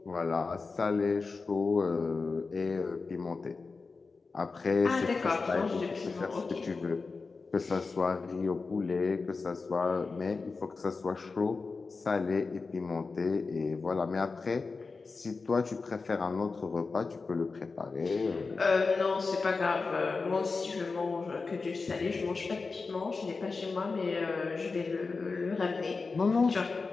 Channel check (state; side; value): quieter; right; 4.3 dB